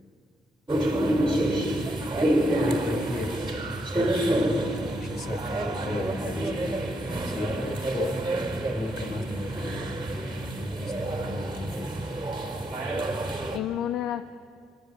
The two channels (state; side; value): normal; both; correlation 0.78